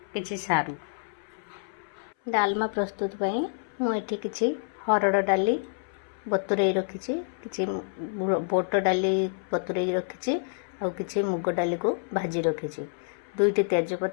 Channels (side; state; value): right; silent; 59 dB below the other